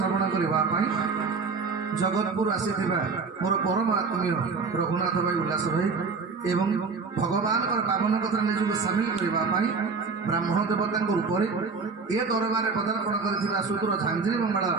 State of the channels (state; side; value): quieter; left; 4.7 dB